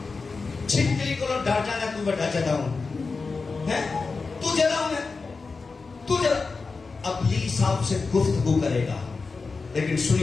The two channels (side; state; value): right; quieter; 4.3 dB